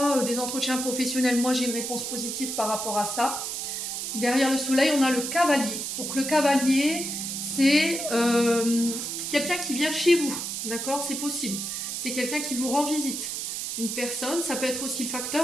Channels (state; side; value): noise; right; hiss, 4 dB below the sound